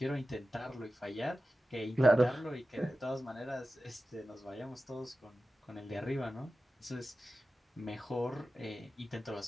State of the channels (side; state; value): both; normal; correlation 0.94